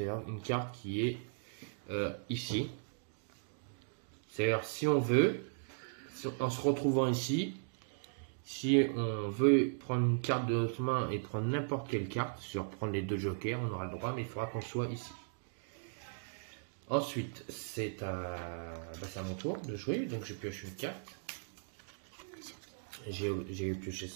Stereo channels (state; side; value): silent; left; digital silence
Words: une carte qui est ici. C'est-à-dire, si on veut, en se retrouvant ici, si on veut prendre une carte de notre main et prendre n'importe quelle carte, sur prendre les 2 jokers, on aura le droit, mais il faudra qu'on soit ici. Ensuite, c'est à mon tour de jouer, donc je pioche une carte. J'ai pioché